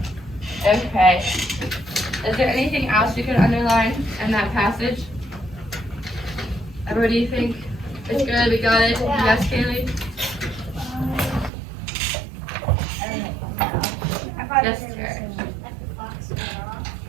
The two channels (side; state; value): left; drops out; at 11.5 s